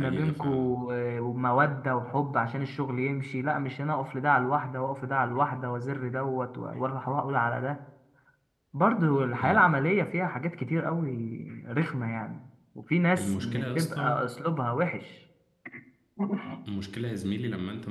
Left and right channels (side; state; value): both; identical; correlation 1.00